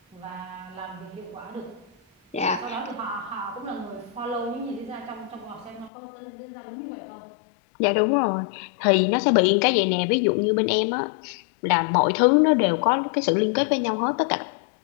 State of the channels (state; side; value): drops out; right; at 5.9 s